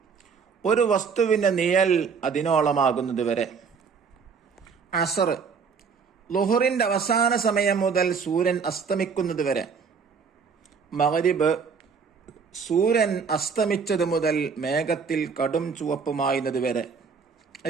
ഒരു വസ്തുവിന്റെ നിഴൽ അതിനോളമാകുന്നത് വരെ. അസർ, ളുഹുറിന്റെ അവസാന സമയം മുതൽ സൂര്യൻ അസ്തമിക്കുന്നത് വരെ. മഗ്രിബ്, സൂര്യൻ അസ്തമിച്ചത് മുതൽ മേഘത്തിൽ കടും ചുവപ്പ് മായുന്നത് വരെ.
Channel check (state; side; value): quieter; left; 5.8 dB